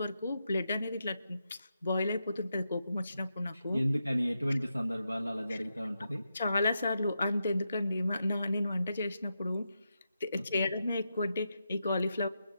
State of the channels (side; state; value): both; inverted; correlation -0.86